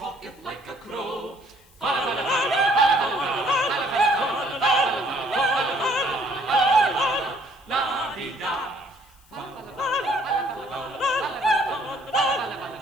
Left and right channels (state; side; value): noise; left; hiss, 29 dB below the sound